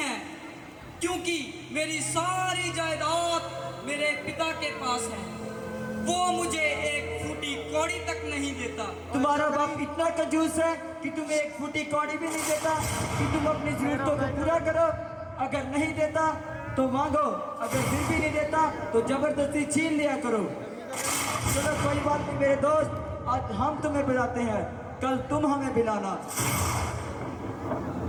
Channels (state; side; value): identical; both; correlation 1.00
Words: क्योंकि मेरी सारी जायदाद मेरे पिता के पास है। वो मुझे एक फूटी कौड़ी तक नहीं देता। तुम्हारा बाप इतना कंजूस है कि तुम्हें एक फूटी कौड़ी भी नहीं देता कि तुम अपनी जरूरतों को पूरा करो। अगर नहीं देता तो मांगो, अगर फिर भी नहीं देता तो जबरदस्ती छीन लिया करो। चलो कोई बात नहीं मेरे दोस्त, आज हम तुम्हें बुलाते हैं, कल तुम हमें बुलाना।